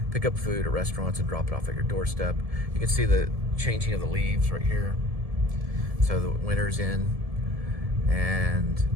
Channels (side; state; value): left; late; 1.7 ms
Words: pick up food at restaurants and drop it off at your doorstep. You can see the changing of the leaves right here. So the winter's in, and